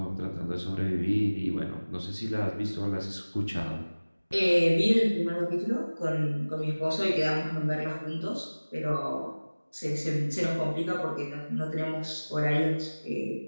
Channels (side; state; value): both; inverted; correlation -1.00